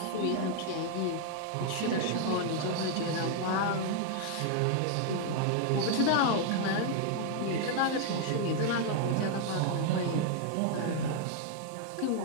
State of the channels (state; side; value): different; both; correlation 0.00